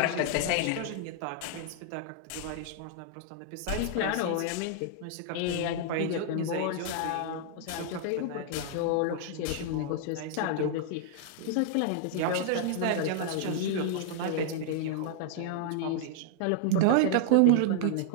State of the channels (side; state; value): both; different; correlation -0.01